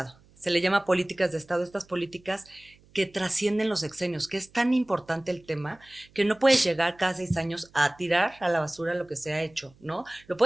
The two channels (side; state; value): right; noise; hum, 29 dB below the sound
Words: Se le llama políticas de Estado, estas políticas que trascienden los sexenios, que es tan importante el tema que no puedes llegar cada 6 años a tirar a la basura lo que se ha hecho, ¿no? Lo